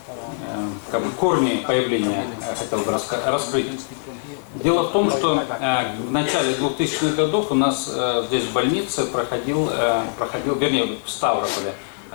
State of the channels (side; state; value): right; silent; 64 dB below the other